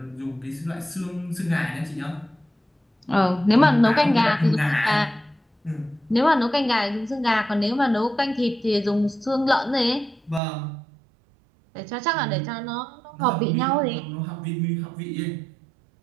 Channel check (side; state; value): left; drops out; at 10.4 s